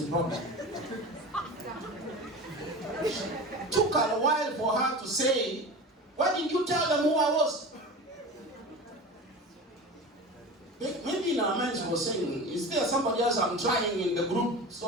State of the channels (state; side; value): normal; both; correlation 0.32